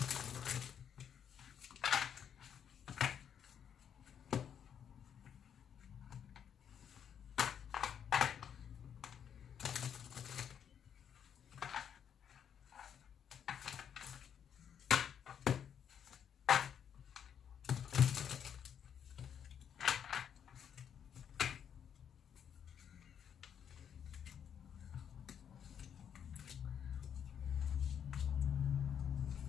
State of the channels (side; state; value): right; quieter; 8.4 dB